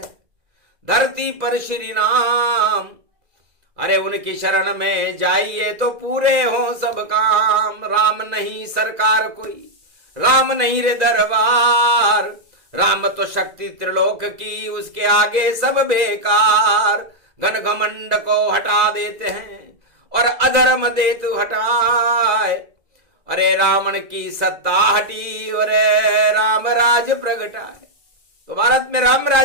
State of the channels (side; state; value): left; late; 2.0 ms